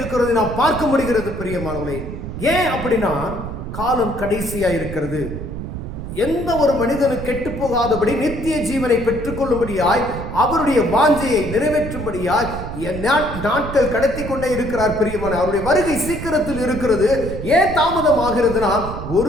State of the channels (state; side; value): noise; right; rumble, 8 dB below the sound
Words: நாம் பார்க்க முடிகிறது. பிரியமானவர்களே, ஏன் அப்படின்னா காலம் கடைசியா இருக்கிறது. எந்த ஒரு மனிதனும் கெட்டு போகாதபடி நித்திய ஜீவனை பெற்றுக் கொள்ளும்படியாய் அவருடைய வாஞ்சையை நிறைவேற்றும்படியாய் நாட்கள் கடத்தி கொண்டே இருக்கிறார். பிரியமான, அவருடைய வருகை சீக்கிரத்தில் இருக்கிறது. ஏன் தாமதம் ஆகிறதுனா,